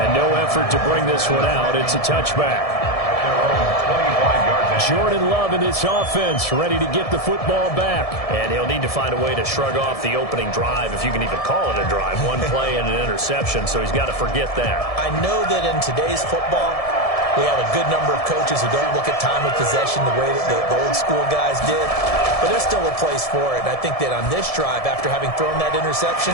no effort to bring this one out. It's a touchback. Jordan Love in this offense, ready to get the football back. And he'll need to find a way to shrug off the opening drive, if you can even call it a drive. One play and an interception, so he's got to forget that. I know that in today's football, we have a good number of coaches who don't look at time of possession the way that the old school guys did. But there's still a place for it. And I think that on this drive, after having thrown that interception,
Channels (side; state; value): right; late; 1.7 ms